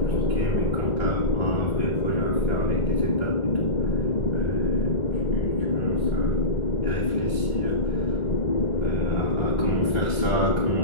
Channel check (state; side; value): late; right; 1.4 ms